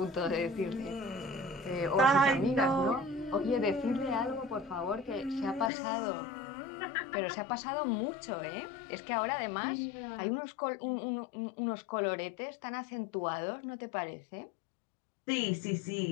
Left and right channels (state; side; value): drops out; right; at 5.7 s